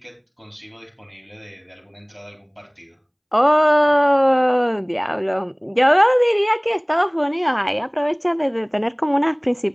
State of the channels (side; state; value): both; identical; correlation 1.00